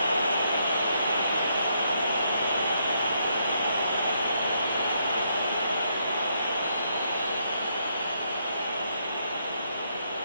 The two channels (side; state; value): both; inverted; correlation -0.75